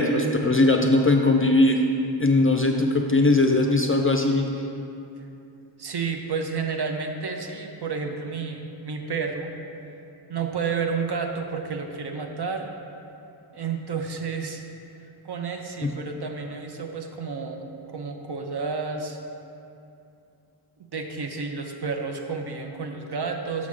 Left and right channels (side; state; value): both; normal; correlation 0.33